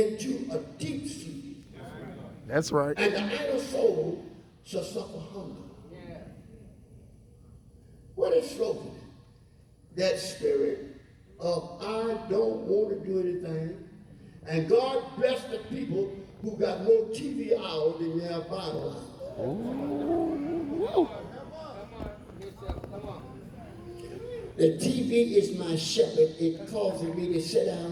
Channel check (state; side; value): identical; both; correlation 1.00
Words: a deep sleep. That's right. And the idle soul shall suffer hunger. What is slothfulness? That spirit of I don't want to do anything. And God bless the people who got more TV hours than they have Bible hours. The TV is my shepherd. It causes me to sit down